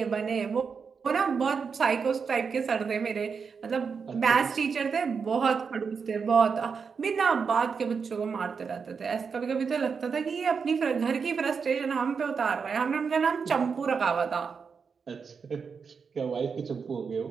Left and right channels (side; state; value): left; quieter; 5.8 dB